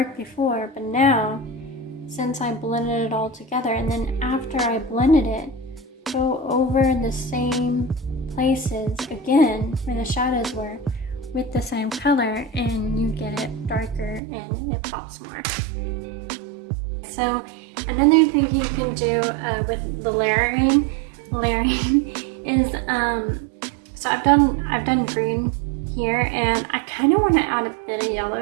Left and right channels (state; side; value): drops out; left; at 14.2 s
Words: before, but now, since I blended it all together, and then after I blended it, go over the same places again where the shadows were with the same color, and you get it darker and it pops more. So another thing you can do with the layering is so I've done green here, and I kind of want to add a bit of